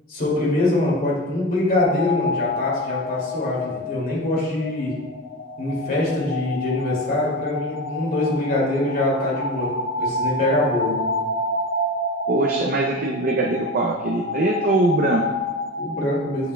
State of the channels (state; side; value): normal; both; correlation 0.27